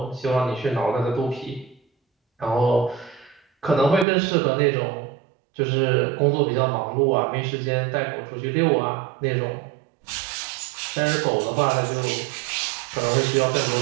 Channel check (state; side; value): drops out; left; at 4.0 s